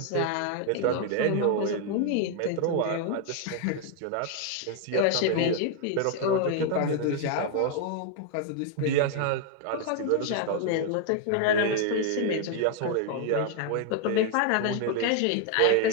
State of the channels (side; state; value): both; different; correlation 0.00